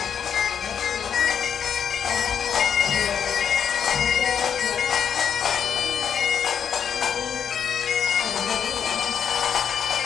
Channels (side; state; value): right; quieter; 7.9 dB